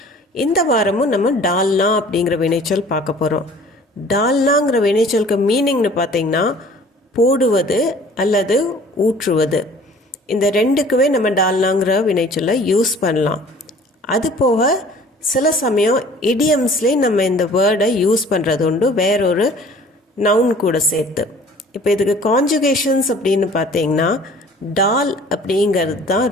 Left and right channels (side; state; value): both; normal; correlation 0.50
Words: இந்த வாரமும் நம்ம டால்னா அப்படிங்கிற வினைச்சொல் பார்க்க போகிறோம். டால்னாங்கிற வினைச்சொலுக்கு மீனிங்னு பார்த்தீங்கன்னா போடுவது அல்லது ஊற்றுவது. இந்த ரெண்டுக்குவே நம்ம டால்னாங்கிற வினைச்சொல்லை யூஸ் பண்ணலாம். அது போக சில சமயம் இடியம்ஸ்லேயே நம்ம இந்த வேர்டை யூஸ் பண்ணுறது உண்டு, வேறொரு நவுன் கூட சேர்த்து. இப்போ இதுக்கு கான்ஜுகேஷன்ஸ் அப்படின்னு பார்த்தீங்கன்னா டால் அப்படிங்கிறது தான்